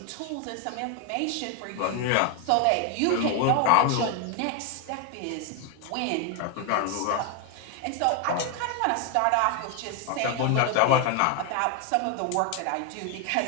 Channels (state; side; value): different; both; correlation 0.01